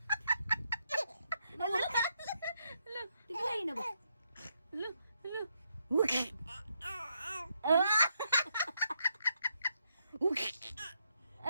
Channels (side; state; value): both; inverted; correlation -0.78